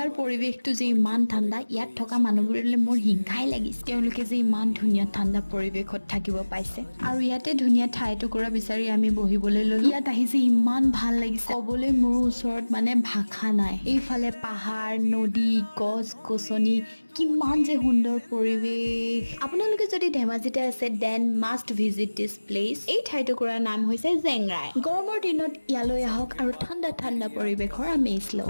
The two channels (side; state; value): both; inverted; correlation -1.00